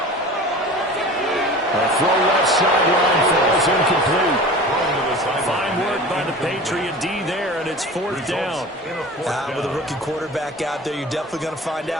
A throw left sideline falls incomplete. Fine work by the Patriot D there, and it's 4th down. With a rookie quarterback out there, you're definitely going to find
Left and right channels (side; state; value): both; normal; correlation 0.38